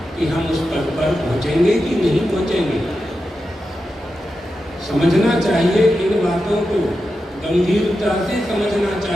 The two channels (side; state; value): both; normal; correlation 0.90